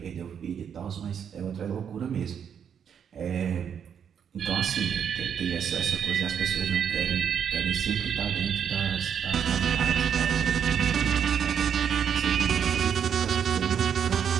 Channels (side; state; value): left; quieter; 7.9 dB